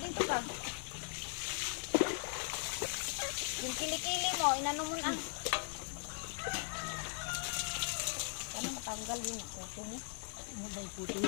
ka. Yung kilikili mo, inano mo na. Paano matanggal yun yung kuto mo? Ano ba yung puto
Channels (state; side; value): silent; right; 52 dB below the other